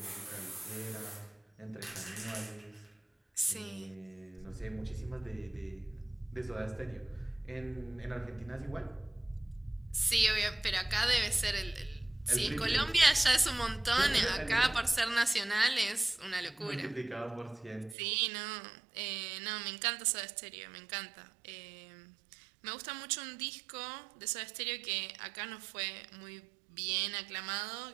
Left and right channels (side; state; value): left; drops out; at 17.9 s